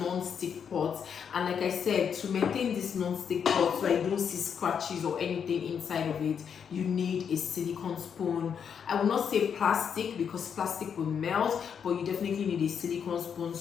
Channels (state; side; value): quieter; right; 7.4 dB